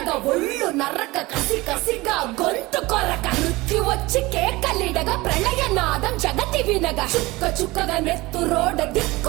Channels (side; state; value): left; quieter; 21.2 dB